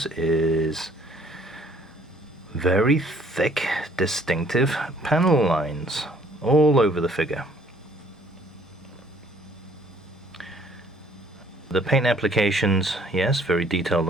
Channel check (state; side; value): normal; both; correlation 0.60